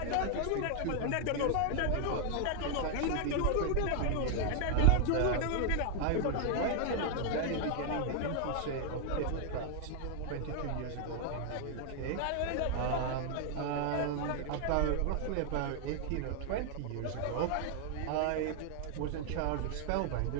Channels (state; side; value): different; both; correlation 0.00